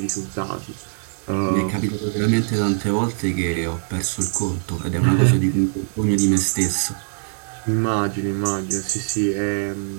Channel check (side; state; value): left; silent; 61 dB below the other